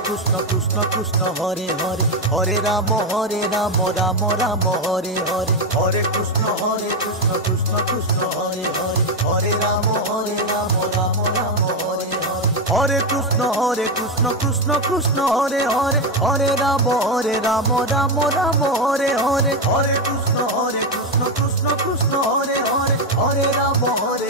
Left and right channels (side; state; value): both; normal; correlation 0.08